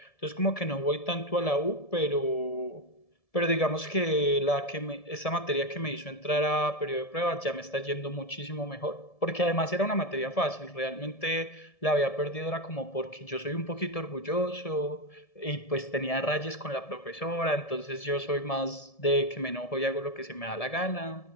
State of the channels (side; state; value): right; late; 1.7 ms